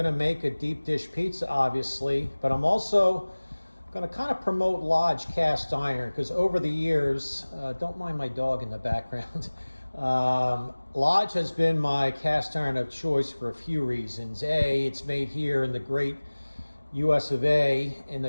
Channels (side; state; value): both; inverted; correlation -1.00